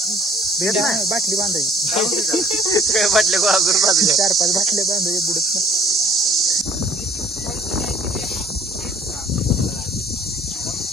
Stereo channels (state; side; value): normal; both; correlation 0.56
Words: बाटली बांधायची बाटल्या 4-5 बाटल्या बांधायचे बुडत ना.